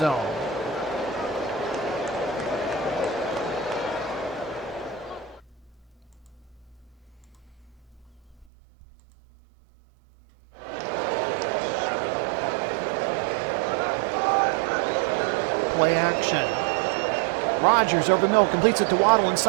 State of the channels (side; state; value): left; drops out; at 8.5 s